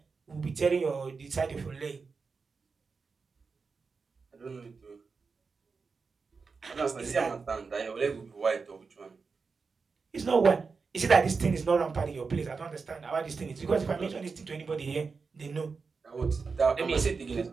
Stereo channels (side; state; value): left; quieter; 4.8 dB